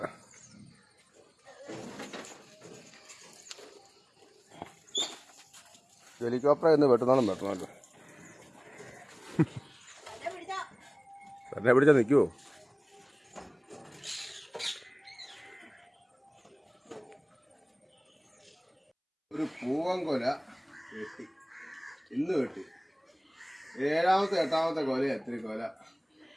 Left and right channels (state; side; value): identical; both; correlation 1.00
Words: ഹെലികോപ്റ്റർ എന്ന് വെട്ടണമല്ലോ. തന്നെ പിടിച്ചാൽ നിൽക്കുവോ? ഒരു പൂവൻകൊല വെട്ടി, ഇന്ന് വെട്ടി. 7ാമത്തെ 8ാമത്തെ കൊല. എത്ര കൊല